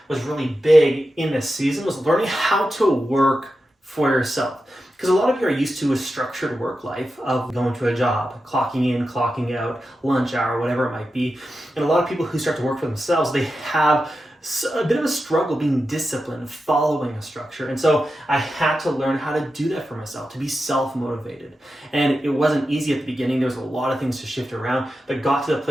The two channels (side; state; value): both; normal; correlation 0.91